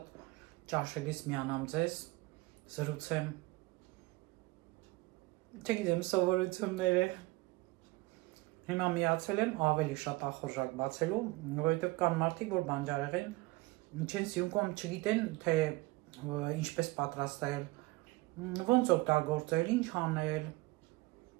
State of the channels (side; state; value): left; quieter; 21.8 dB